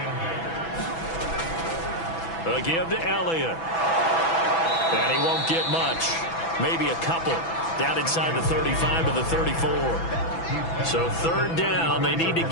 A give to Elliott. And he won't get much. Maybe a couple. Down inside the 35 to the 34. So 3rd down. They need to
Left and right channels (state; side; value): late; right; 6.0 ms